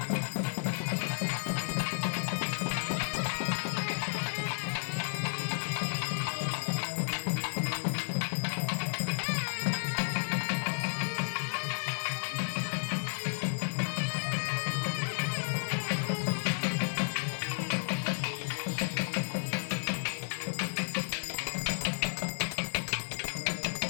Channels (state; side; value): silent; right; 56 dB below the other